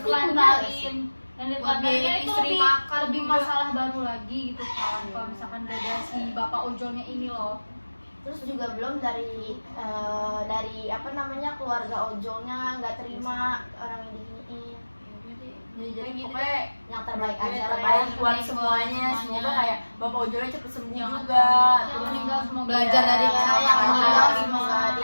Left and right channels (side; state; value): both; inverted; correlation -1.00